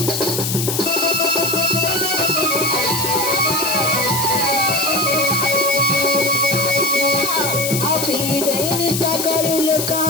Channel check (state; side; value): noise; left; hiss, 2 dB below the sound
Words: आपी देनी सा करू लोक